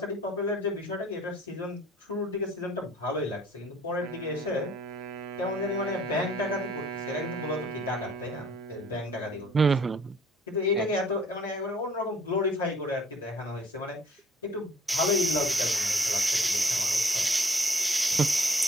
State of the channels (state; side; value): normal; both; correlation 0.56